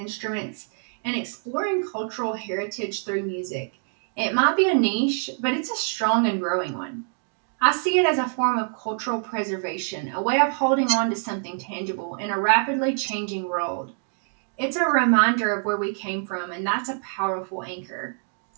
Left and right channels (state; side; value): silent; left; 60 dB below the other